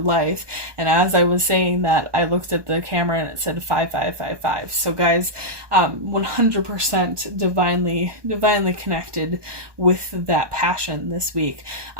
And as I was saying that, I looked at the camera and it said 5555. So guys, 100% divinely connected with that passion this week.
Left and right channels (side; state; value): left; late; 1.2 ms